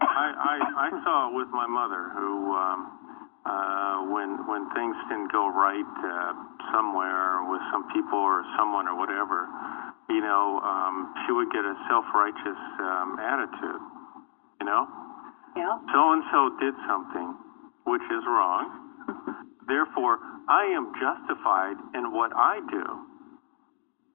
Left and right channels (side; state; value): right; quieter; 37.8 dB